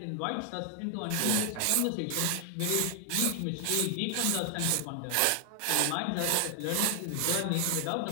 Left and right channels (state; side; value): different; both; correlation 0.00